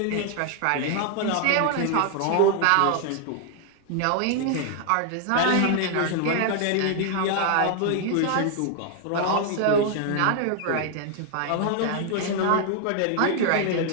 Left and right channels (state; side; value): different; both; correlation 0.00